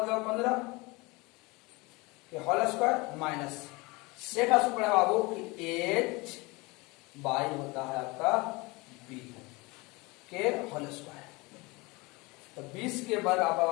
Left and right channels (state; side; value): quieter; right; 24.9 dB